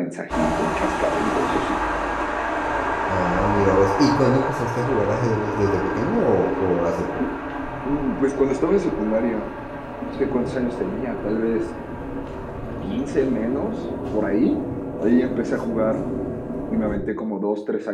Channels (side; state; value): both; identical; correlation 1.00